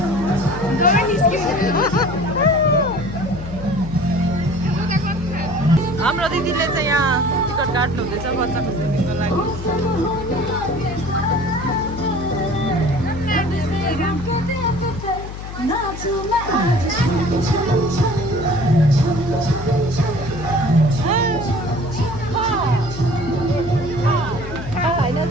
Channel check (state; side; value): noise; left; hum, 9 dB below the sound